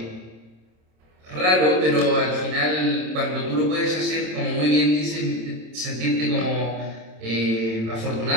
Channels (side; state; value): left; late; 27 ms